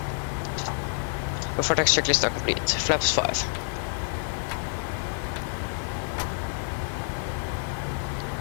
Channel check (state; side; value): silent; right; 59 dB below the other